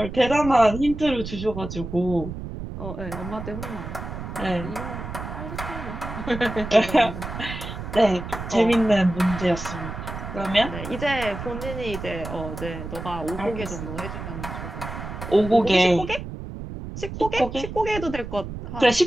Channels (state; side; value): noise; right; rumble, 8 dB below the sound